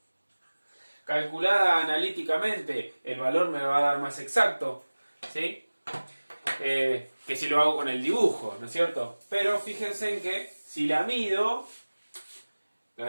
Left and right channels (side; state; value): both; inverted; correlation -1.00